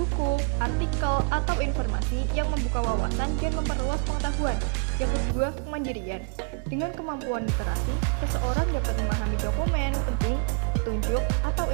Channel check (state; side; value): quieter; left; 38.7 dB